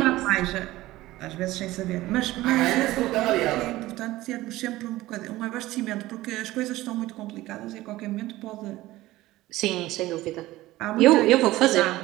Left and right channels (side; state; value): left; quieter; 17.3 dB